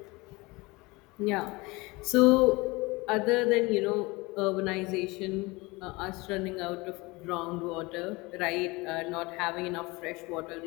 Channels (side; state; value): right; quieter; 23.8 dB